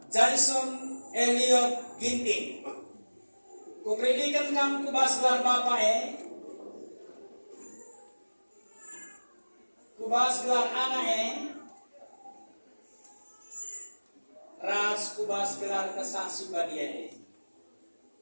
Jason Elliot Ginting. Kupredikan kam kubas gelar bapak kubas gelar anak ras kubas gelar kesaksi badia.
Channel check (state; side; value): inverted; both; correlation -1.00